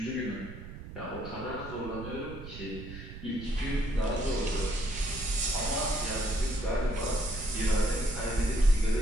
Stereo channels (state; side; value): noise; right; rumble, 12 dB below the sound